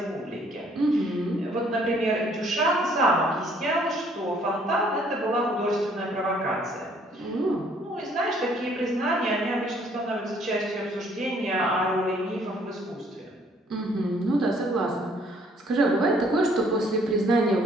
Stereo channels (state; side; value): normal; both; correlation 0.62